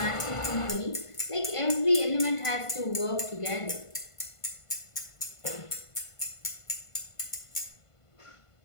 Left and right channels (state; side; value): late; right; 1.5 ms